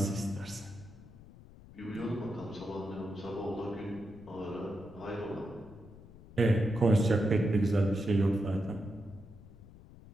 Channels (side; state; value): left; noise; rumble, 19 dB below the sound